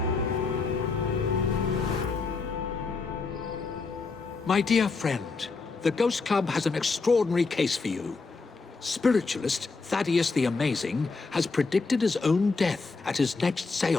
My dear friend, the Ghost Club has an extraordinary case for you. Spiritualist Thaddeus the Amazing has predicted his own death at his next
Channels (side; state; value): right; quieter; 4.2 dB